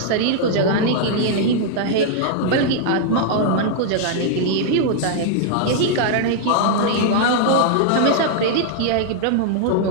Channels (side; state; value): both; different; correlation -0.01